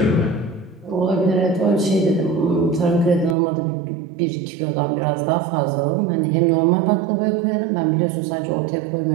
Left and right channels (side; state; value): left; drops out; at 3.4 s